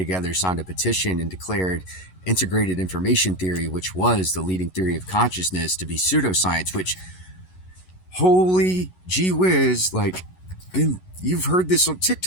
signed a petition, and declared integrated information theory, which was the leading theory of consciousness, to be pseudoscience. Which, holy gee whiz, like, you've heard this on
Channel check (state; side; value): late; right; 11 ms